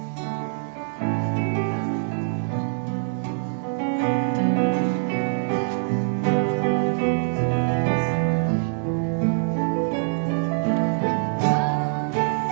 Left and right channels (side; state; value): left; silent; digital silence